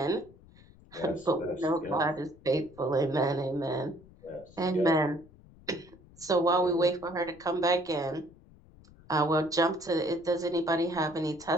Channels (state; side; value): noise; left; rumble, 24 dB below the sound